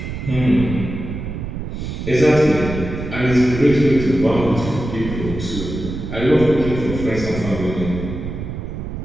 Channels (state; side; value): noise; right; rumble, 7 dB below the sound